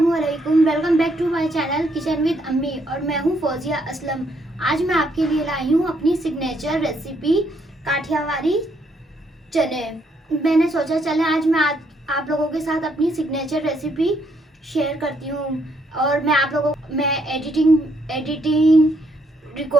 Welcome back to my channel kitchen with Ammi और मैं हूं फौजिया असलम। आज मैं आपके लिए लाई हूं अपनी सिग्नेचर रेसिपी काठियावाड़ी चने। मैंने सोचा चले आज मैं आप लोगों के साथ अपनी सिग्नेचर रेसिपी शेयर करती हूं और मैं एडिटिंग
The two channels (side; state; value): both; normal; correlation 0.72